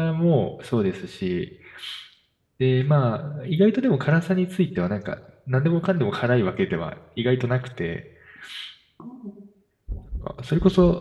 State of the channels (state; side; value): identical; both; correlation 1.00